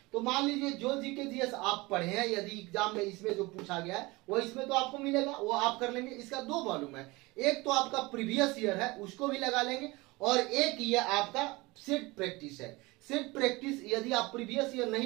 तो मान लीजिए जो जीके जीएस आप पढ़े हैं, यदि एग्जाम में इसमें जो पूछा गया है वो इसमें तो आपको मिलेगा, वो आप कर लेंगे। इसका दो वॉल्यूम है, एक तो आपका प्रीवियस ईयर है उसको भी लगा लेंगे, और एक ये आपका सेट प्रैक्टिस है। सेट प्रैक्टिस यदि आप प्रीवियस ईयर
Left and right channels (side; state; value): left; quieter; 22.9 dB